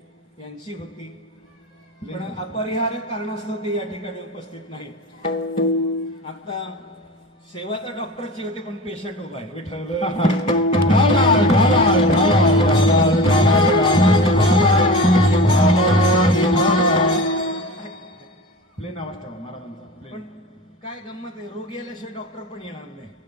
यांची होती, पण अपरिहार्य कारणास्तव ते या ठिकाणी उपस्थित नाही. आता सेवा तर डॉक्टरची होती पण पेशंट उभा आहे. विठ्ठल प्लेन आवाज ठेवा महाराजांचा. पण काय गंमत आहे, रोगी आल्याशिवाय डॉक्टर पण येणार नाही.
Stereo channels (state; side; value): normal; both; correlation 0.33